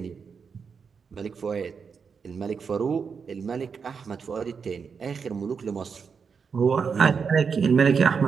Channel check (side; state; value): left; quieter; 5.9 dB